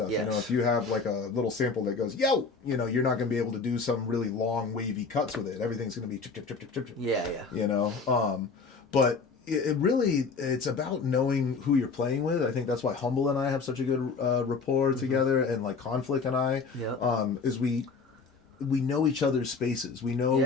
Yes. You know, if you have like a little sample that goes, yo, you know, you're not going to be able to do some really long, wavy cuts with it. Everything's going to be chip, chip, chip, chip, chip. Yeah, yeah. You know, but it's about knowing who you're playing with. I think that's why Humble and I have such a good rapport together, and like Conflict and I, is we know each other's spaces. We know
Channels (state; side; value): quieter; right; 4.7 dB